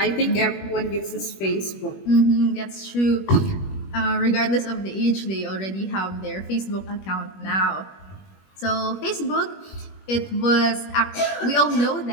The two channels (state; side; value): late; right; 21 ms